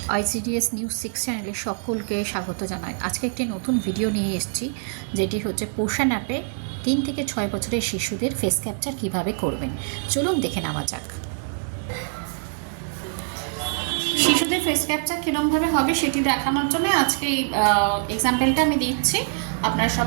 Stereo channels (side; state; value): left; silent; 62 dB below the other